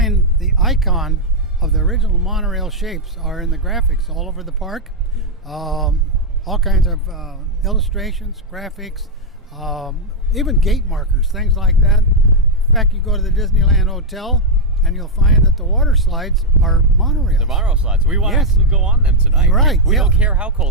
the icon of the original monorail shapes are in the graphics all over the park. All kinds of illustrations, graphics, even gate markers, things like that. In fact, you go to the Disneyland Hotel and you'll find that the water slides are monorails. The monorail slides. We want to Yes. actually go on them tonight. Right, We yeah. don't care how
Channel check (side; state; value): both; normal; correlation -0.01